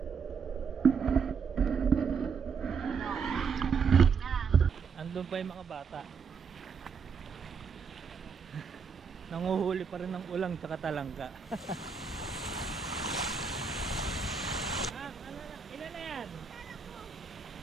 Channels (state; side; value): quieter; left; 5.8 dB